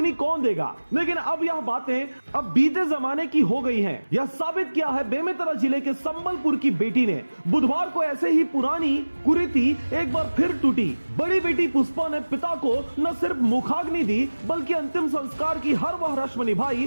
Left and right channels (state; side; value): inverted; both; correlation -1.00